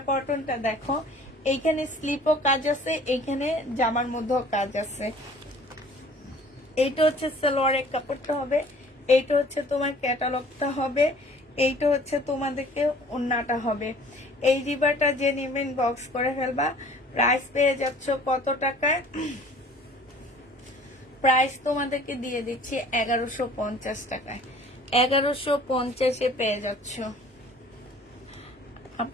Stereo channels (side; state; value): both; normal; correlation 0.51